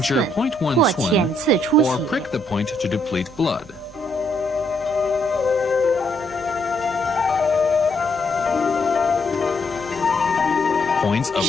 寸 0.1或 Tun 浅刺出 or 血。 prick the point to deplete blood.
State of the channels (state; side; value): normal; both; correlation 0.73